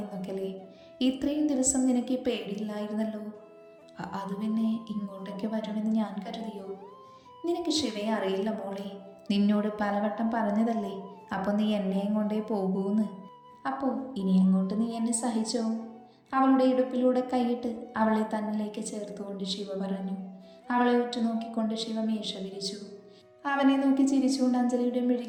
എന്നൊക്കെയല്ലേ? ഇത്രയും ദിവസം നിനക്ക് ഈ പേടിയില്ലായിരുന്നല്ലോ. അത് പിന്നെ ഇങ്ങോട്ടൊക്കെ വരുമെന്ന് ഞാൻ കരുതിയോ? നിനക്ക് ശിവയെ അറിയില്ല മോളെ, നിന്നോട് പലവട്ടം പറഞ്ഞതല്ലേ. അപ്പോൾ നീ എന്നെയും കൊണ്ടേ പോകൂന്ന്. അപ്പോൾ ഇനി അങ്ങോട്ട് നീ എന്നെ സഹിച്ചോ? അവളുടെ ഇടുപ്പിലൂടെ കൈയിട്ട് അവളെ തന്നിലേക്ക് ചേർത്തുകൊണ്ട് ശിവ പറഞ്ഞു. അവളെ ഉറ്റുനോക്കിക്കൊണ്ട് ശിവ മീശ വിരിച്ചു. അവനെ നോക്കി ചിരിച്ചുകൊണ്ട് അഞ്ജലിയുടെ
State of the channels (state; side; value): identical; both; correlation 1.00